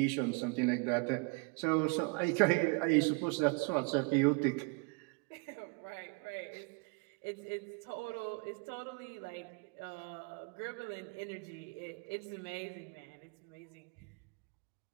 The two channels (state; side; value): quieter; left; 31.8 dB